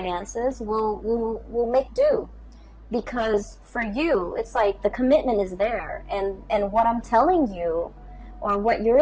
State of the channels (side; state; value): both; identical; correlation 1.00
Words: We'll make do, because for you, it's like the commitment is there, and what I'm telling you, or what